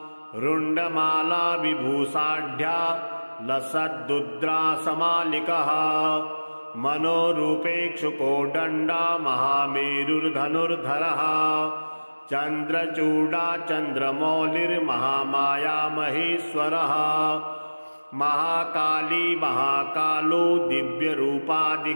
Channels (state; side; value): inverted; both; correlation -1.00